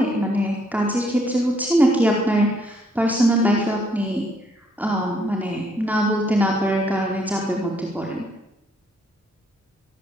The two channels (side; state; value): both; normal; correlation 0.69